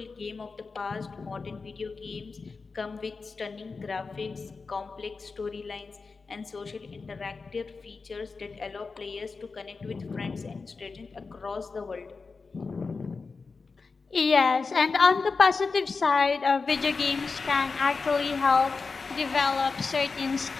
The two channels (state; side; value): quieter; right; 4.4 dB